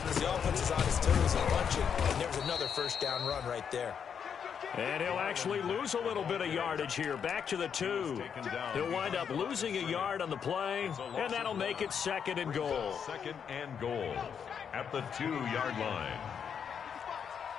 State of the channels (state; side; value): quieter; right; 7.4 dB